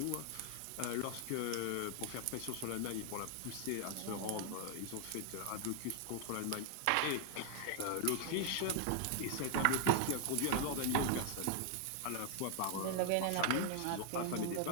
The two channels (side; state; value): both; different; correlation -0.01